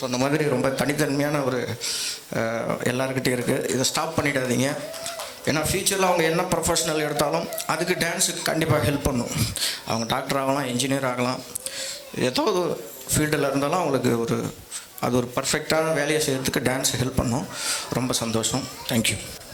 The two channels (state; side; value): identical; both; correlation 1.00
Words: சொன்ன மாதிரி ரொம்ப தனித்தன்மையான ஒரு எல்லாருக்கிட்டே இருக்குது. இதை ஸ்டாப் பண்ணிடாதீங்க. ஏன்னா ஃப்யூச்சரில் அவங்க என்ன ப்ரொஃபஷனல் எடுத்தாலும் அதுக்கு டான்ஸுக்கு கண்டிப்பாக ஹெல்ப் பண்ணும். அவங்க டாக்டர் ஆகலாம், இன்ஜினியர் ஆகலாம், ஏதோ ஒரு ஃபீல்டில் இருந்தாலும் அவங்களுக்கு அது ஒரு பர்ஃபெக்டான வேலையை செய்கிறதுக்கு டான்ஸ் ஹெல்ப் பண்ணும். ரொம்ப சந்தோஷம். தேங்க்யூ.